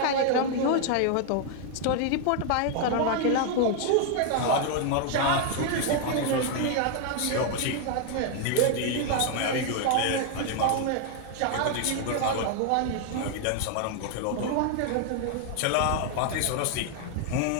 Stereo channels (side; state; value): both; different; correlation 0.00